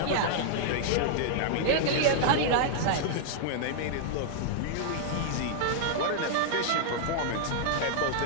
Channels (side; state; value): both; different; correlation -0.01